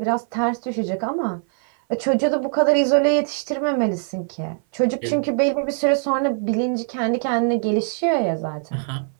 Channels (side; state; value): left; silent; 58 dB below the other